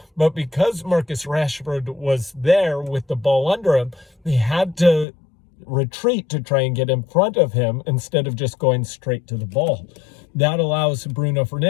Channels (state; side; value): drops out; right; at 5.1 s